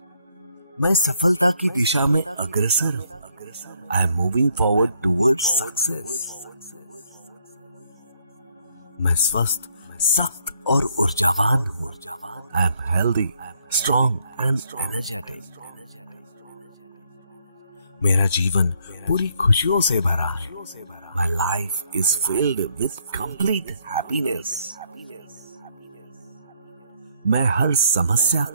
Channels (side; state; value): both; inverted; correlation -0.70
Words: मैं सफलता की दिशा में अग्रसर हूँ। I am moving forward towards success. मैं स्वस्थ, सख्त और ऊर्जावान हूँ। I am healthy, strong and energetic. मेरा जीवन पूरी खुशियों से भरा है। My life is filled with complete happiness. मैं हर समस्या